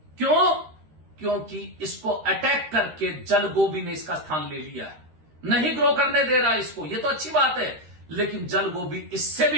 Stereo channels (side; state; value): left; late; 13 ms